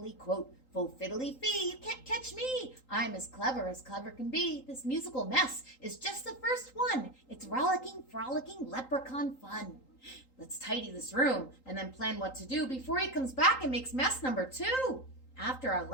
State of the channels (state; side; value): late; right; 3.8 ms